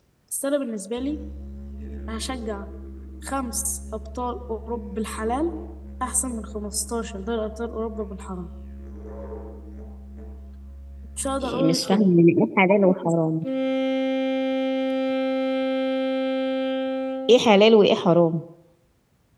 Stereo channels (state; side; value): identical; both; correlation 1.00